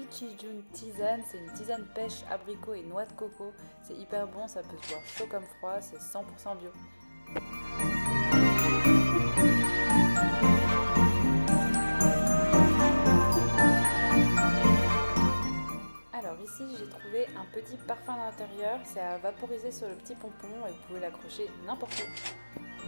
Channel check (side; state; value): both; inverted; correlation -1.00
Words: June tisane, c'est une tisane pêche, abricot et noix de coco, c'est hyper bon, ça peut se boire chaud comme froid, c'est 100% bio. Alors ici j'ai trouvé un petit parfum d'intérieur, c'est à vaporiser sur le petit pompon et vous pouvez l'accrocher n'importe où.